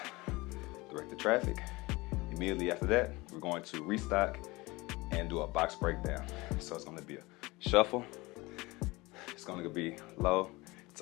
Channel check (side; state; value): right; quieter; 22.5 dB